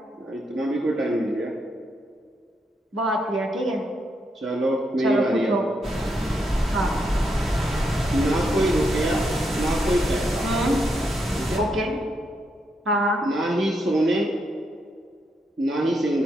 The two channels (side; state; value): both; normal; correlation 0.80